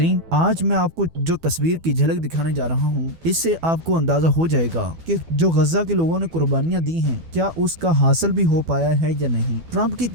آج میں آپ کو جو تصویر کی جھلک دکھانے جا رہا ہوں، اس سے آپ کو اندازہ ہو جائے گا کہ جو غزہ کے لوگوں نے قربانیاں دی ہیں، کیا اس کا حاصل بھی ہو پایا ہے یا نہیں۔ ٹرمپ کی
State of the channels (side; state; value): left; late; 12 ms